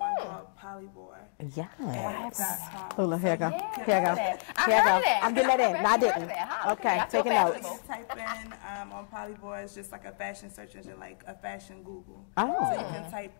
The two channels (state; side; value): silent; right; digital silence